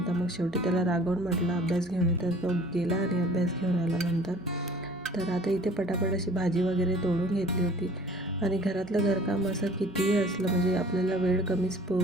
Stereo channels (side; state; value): both; normal; correlation 0.49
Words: मग शेवटी त्याला रागवून म्हटलं अभ्यास घेऊन ये, तर तो गेला आणि अभ्यास घेऊन आला नंतर. तर आता इथे पटापट अशी भाजी वगैरे तोडून घेतली होती. आणि घरातलं घरकाम असं कितीही असलं म्हणजे आपल्याला वेळ कमीच